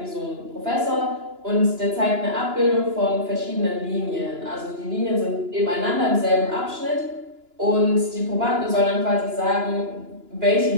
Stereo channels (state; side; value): late; left; 2.9 ms